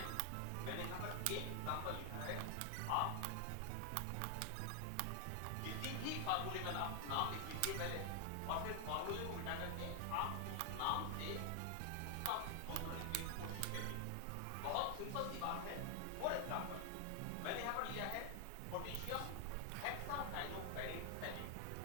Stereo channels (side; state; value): both; different; correlation 0.00